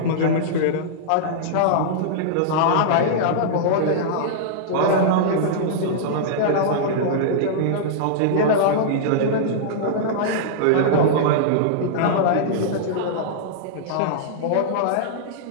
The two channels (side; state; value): both; different; correlation -0.02